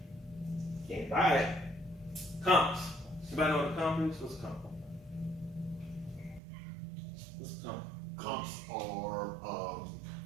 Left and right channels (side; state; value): left; drops out; at 6.4 s